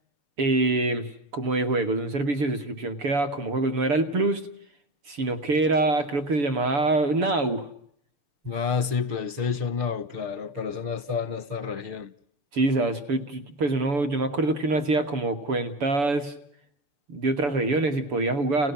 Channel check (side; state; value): left; late; 6.6 ms